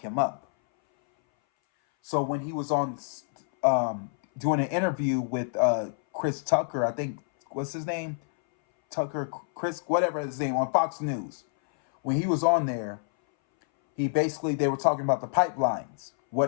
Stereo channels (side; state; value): right; silent; 59 dB below the other